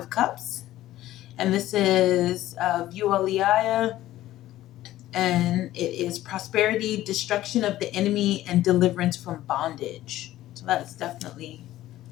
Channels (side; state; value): right; quieter; 14.7 dB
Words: Cups. And this is Vualiaya. And it is prosperity, destruction of the enemy, and deliverance from bondage. So that's definitely